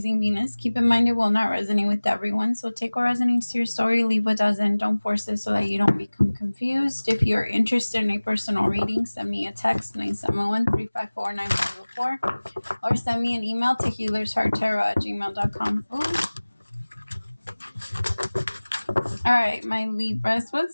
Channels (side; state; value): both; inverted; correlation -1.00